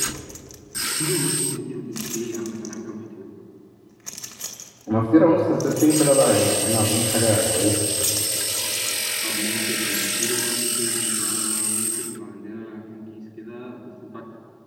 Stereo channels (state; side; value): identical; both; correlation 1.00